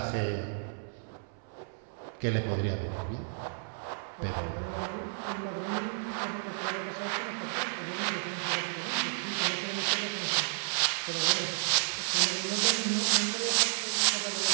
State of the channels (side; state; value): left; silent; 57 dB below the other